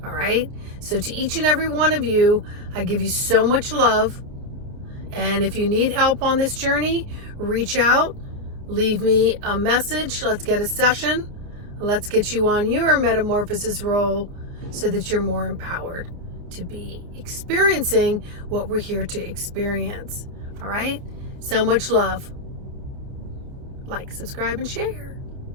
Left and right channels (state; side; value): late; left; 30 ms